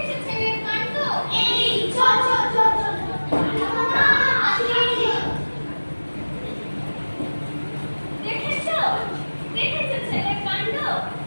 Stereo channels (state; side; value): inverted; both; correlation -1.00